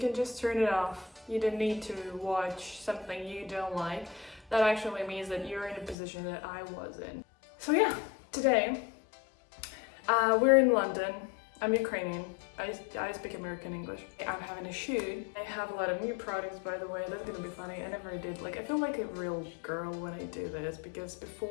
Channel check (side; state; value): right; drops out; at 6.0 s